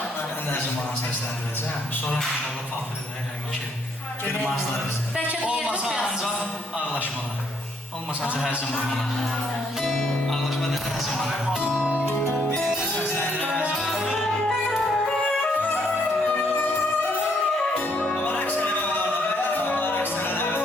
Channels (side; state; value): both; normal; correlation 0.70